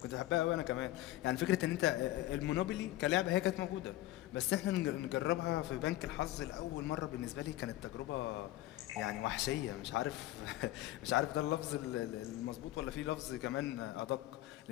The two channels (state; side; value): quieter; right; 15.7 dB